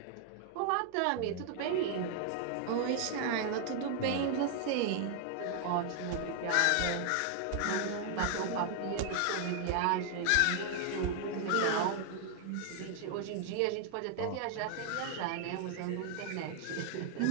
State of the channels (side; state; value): both; different; correlation 0.00